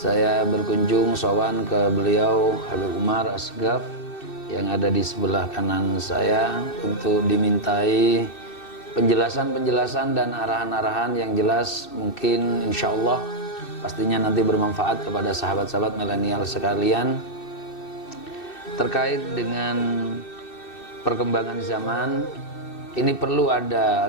berkunjung sowan ke beliau Habib Umar Asgaf yang ada di sebelah kanan saya untuk dimintai penjelasan-penjelasan dan arahan-arahan yang jelas, mungkin insya Allah pastinya nanti bermanfaat kepada sahabat-sahabat milenial sekalian terkait dengan perkembangan zaman. Ini perlu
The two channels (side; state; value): right; late; 2.6 ms